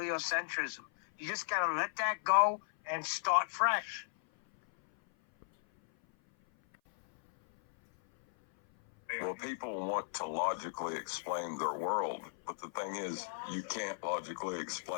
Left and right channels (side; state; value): right; silent; 54 dB below the other